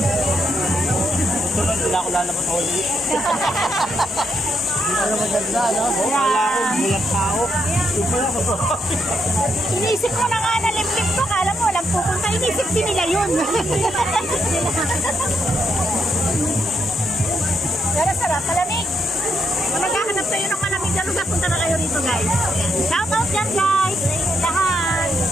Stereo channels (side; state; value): both; normal; correlation 0.78